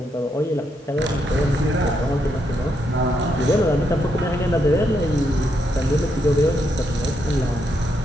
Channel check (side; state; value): both; normal; correlation 0.79